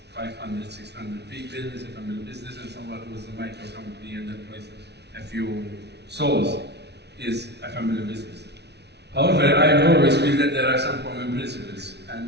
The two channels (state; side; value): late; left; 0.49 ms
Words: 500, 600 people is a family business, and someone who is a micro company and employs a few souls is a family business. However, I always feel that there are some common principles,